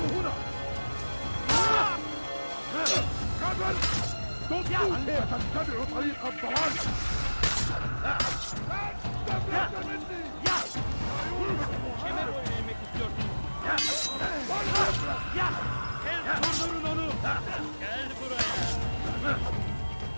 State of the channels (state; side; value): inverted; both; correlation -1.00